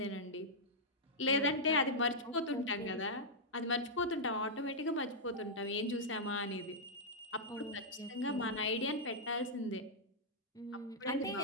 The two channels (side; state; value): both; normal; correlation -0.07